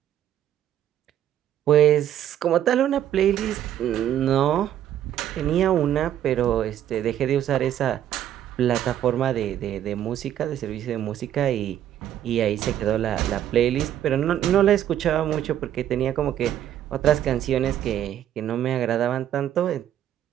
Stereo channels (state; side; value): quieter; left; 11.0 dB